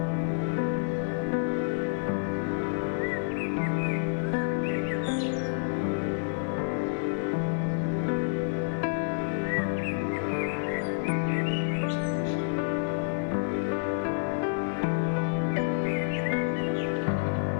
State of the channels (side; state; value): right; silent; 59 dB below the other